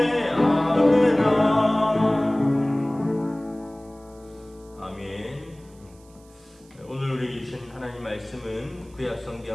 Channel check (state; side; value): noise; right; hiss, 29 dB below the sound